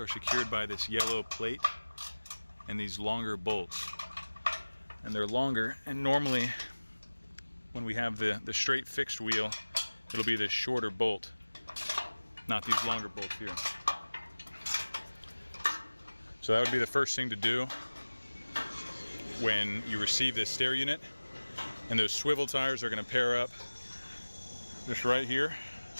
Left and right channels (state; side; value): inverted; both; correlation -1.00